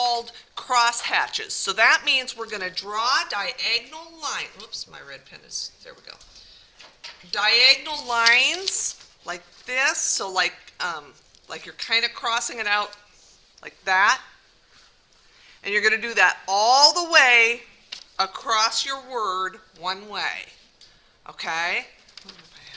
cross hatches. So that means we're going to draw diagonal lines. Whoops, my red pen is, there we go. Diagonal lines like this, so like you're kind of crossing it out like that. And you're going to do that all the way across your word one way. Okay?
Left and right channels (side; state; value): both; identical; correlation 1.00